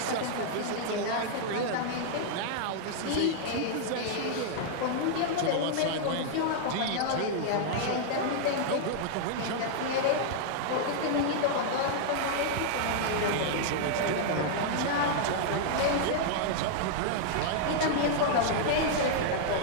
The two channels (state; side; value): different; both; correlation -0.01